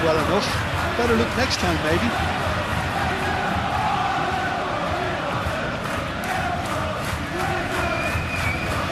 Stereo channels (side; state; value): both; identical; correlation 1.00